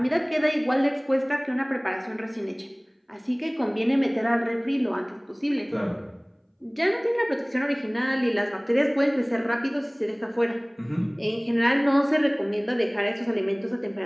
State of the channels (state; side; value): identical; both; correlation 1.00